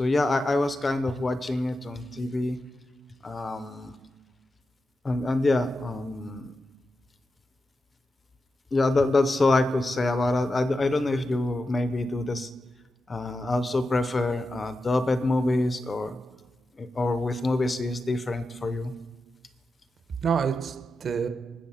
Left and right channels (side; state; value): both; normal; correlation 0.90